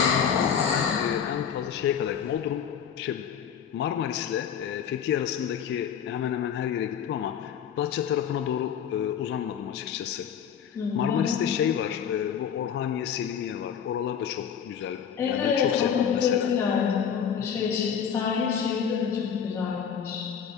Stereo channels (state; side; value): quieter; right; 7.9 dB